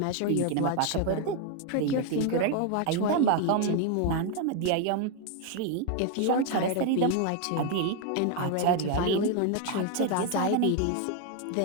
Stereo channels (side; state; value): both; different; correlation 0.01